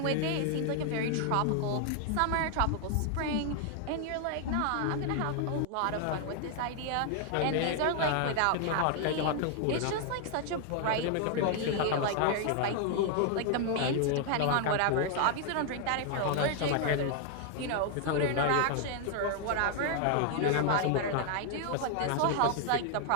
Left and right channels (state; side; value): different; both; correlation 0.00